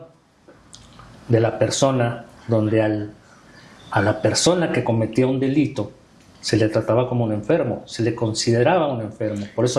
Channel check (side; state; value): both; identical; correlation 1.00